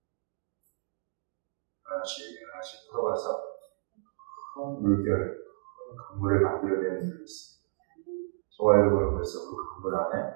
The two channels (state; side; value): silent; left; digital silence